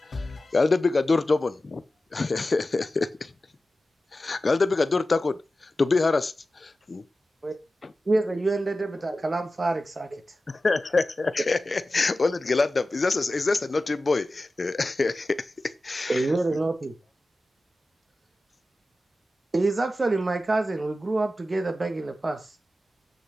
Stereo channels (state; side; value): normal; both; correlation 0.94